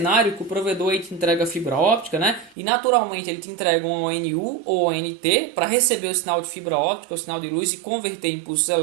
que o provedor aí te entrega fibra óptica, E naturalmente ele te entrega um ONU ou ONT para receber o sinal de fibra óptica, o sinal de luz e converter em impulsos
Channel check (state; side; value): drops out; left; at 2.6 s